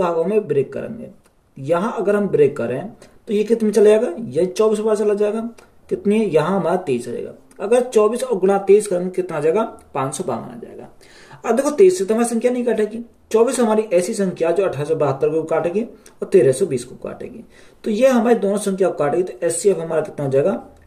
में ब्रेक करेंगे। यहां अगर हम ब्रेक करें तो ये कितने में चला जाएगा? ये 24 बार चला जाएगा। कितनी है? यहां हमारा 23 रहेगा। अगर 24 और गुणा 23 करेंगे कितना आ जाएगा? 552 आ जाएगा। अब देखो 23 से तो हमारी संख्या नहीं काटेगी। 24 हमारी ऐसी संख्या जो 1872 को काटेगी और 1320 को काटेगी। तो ये हमारी दोनों संख्या को काटेगी। तो एचसीएफ हमारा कितना हो जाएगा?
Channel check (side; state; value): both; identical; correlation 1.00